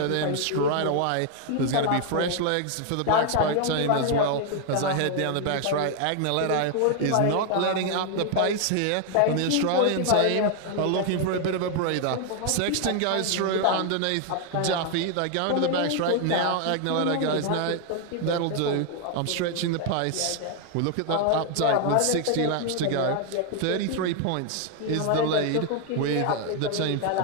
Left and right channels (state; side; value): different; both; correlation 0.00